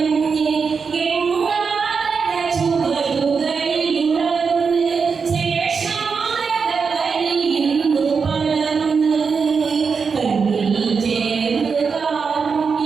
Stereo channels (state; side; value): quieter; left; 5.5 dB